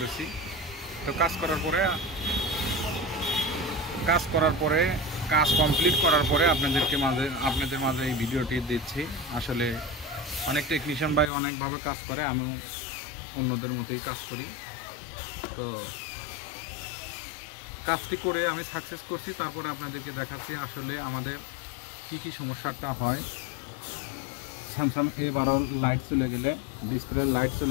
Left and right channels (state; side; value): drops out; right; at 11.3 s